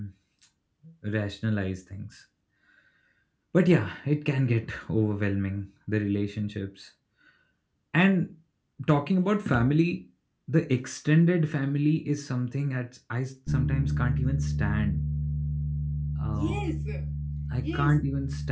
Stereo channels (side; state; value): both; identical; correlation 1.00